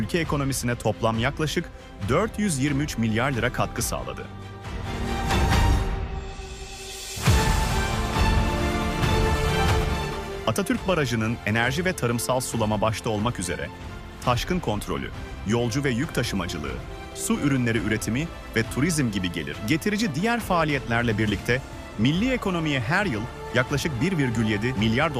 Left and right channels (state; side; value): identical; both; correlation 1.00